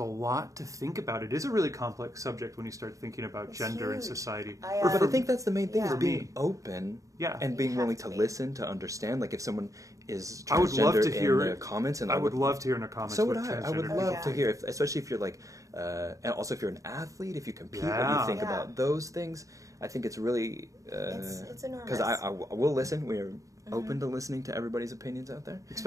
lot to think about. It is a really complex subject when you start thinking about gender and society. But I think that's the main thing, is being open and being willing to be. listen, to understand. Like, if someone is transgender in the comments, and I would love to hear in the comments. So would I. I would love to hear, especially if you're like, and also if you're an athlete, if you compete, and you think about those things. I think it's really it's enormous. Because I will listen. We're open to listening to everybody's opinions out there.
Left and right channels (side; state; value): left; late; 0.16 ms